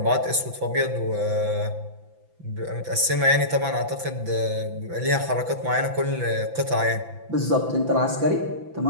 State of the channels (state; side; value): late; left; 5.9 ms